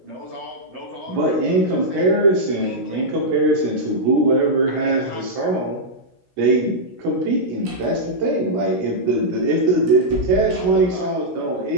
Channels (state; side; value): late; left; 17 ms